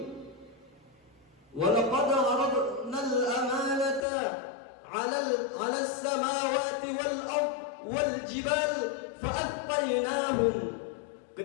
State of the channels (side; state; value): right; drops out; at 4.0 s